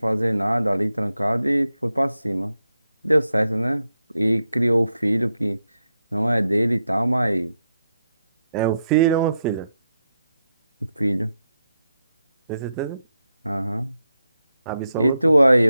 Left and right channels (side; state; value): both; inverted; correlation -0.84